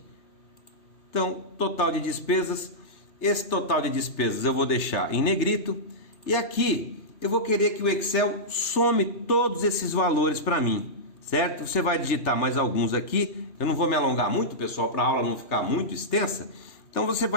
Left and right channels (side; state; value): right; late; 2.9 ms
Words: Então, total de despesas, esse total de despesas eu vou deixar em negrito. E aqui eu vou querer que o Excel some todos esses valores para mim, certo? Você vai digitar mais alguns aqui. Eu não vou me alongar muito, pessoal, para a aula não ficar muito extensa. Então você